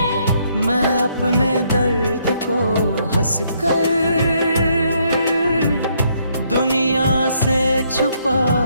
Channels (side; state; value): both; inverted; correlation -0.71